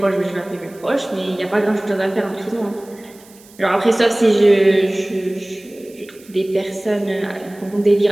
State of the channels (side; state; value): right; noise; hiss, 25 dB below the sound